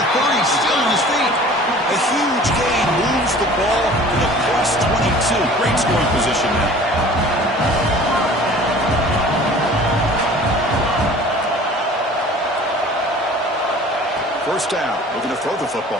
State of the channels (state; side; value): normal; both; correlation 0.46